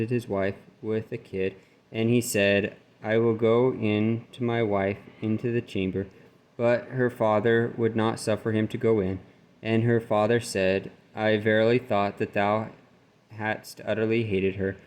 his wife with a kid, and he said, I will go in to my wife into the chamber. But her father would not suffer him to go in. And her father said, I verily thought that thou hadst utterly hated her.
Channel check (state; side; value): identical; both; correlation 1.00